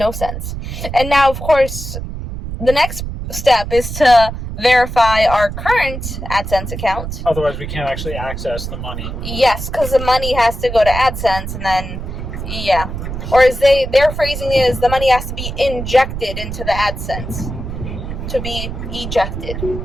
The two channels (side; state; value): right; noise; rumble, 7 dB below the sound